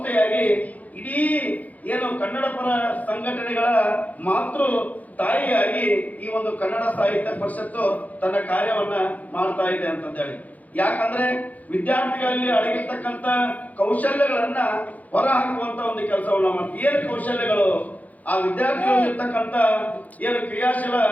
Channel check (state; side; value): late; right; 0.077 ms